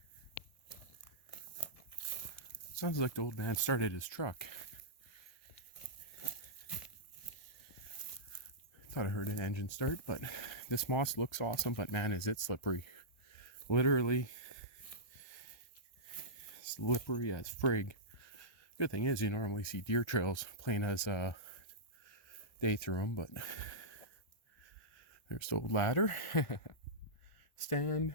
Sounds like the old man started his truck. Thought I heard an engine start, but this moss looks awesome, but man, is it slippery. Literally slippery as frig. Good thing is you normally see deer trails plain as day through them, but there's the old ladder. Stand.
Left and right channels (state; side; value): late; right; 1.4 ms